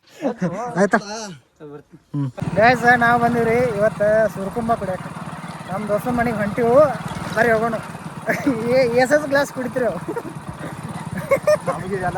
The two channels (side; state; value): both; identical; correlation 1.00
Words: ಆಯ್ತಾ. ಗೈಸ್ ನಾವು ಬಂದಿವ್ರಿ ಇವತ್ತು ಸುರ್ಕುಂಬ ಕುಡಿಯಕ್ಕೆ. ನಮ್ಮ ದೋಸ್ತನ ಮನೆಗೆ ಹೊಂಟಿವು, ಬರ್ರಿ ಹೋಗೋಣ. ಎಸ್ ಗ್ಲಾಸ್ ಕುಡಿತೀರಿ ನಮಗೆ